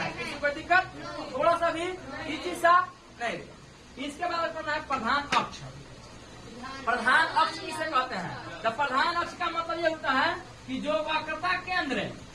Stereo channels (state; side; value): identical; both; correlation 1.00